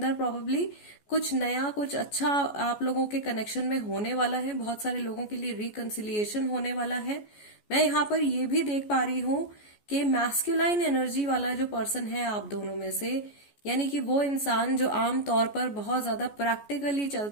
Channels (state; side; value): late; right; 14 ms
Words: प्रोबेबली कुछ नया, कुछ अच्छा आप लोगों के कनेक्शन में होने वाला है. बहुत सारे लोगों के लिए रिकंसिलिएशन होने वाला है. मैं यहाँ पर ये भी देख पा रही हूँ कि मैस्कुलाइन एनर्जी वाला जो पर्सन है आप दोनों में से, यानी कि वो इंसान जो आम तौर पर बहुत ज्यादा प्रैक्टिकली